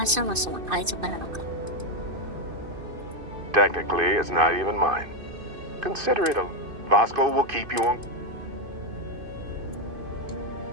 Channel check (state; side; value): late; left; 2.5 ms